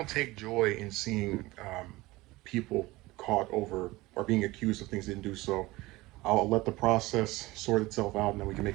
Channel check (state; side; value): quieter; left; 20.1 dB